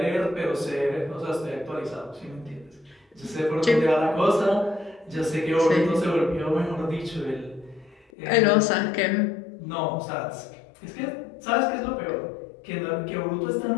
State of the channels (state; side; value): drops out; right; at 8.1 s